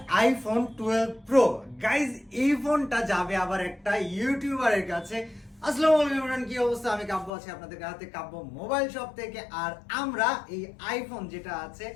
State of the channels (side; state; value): right; drops out; at 7.3 s